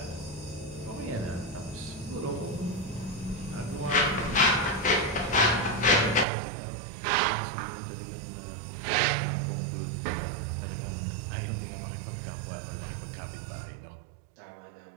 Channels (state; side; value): drops out; left; at 6.2 s